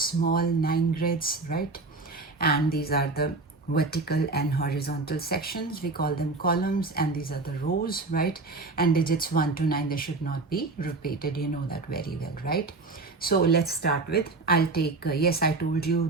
9 grids, right? And these are the vertical and horizontal sections. We call them columns, and these are the rows, right? And digits 1 to 9, they should not be repeated. You know that very well, right? So let's start with, I'll take, yes, I told you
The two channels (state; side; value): quieter; left; 3.6 dB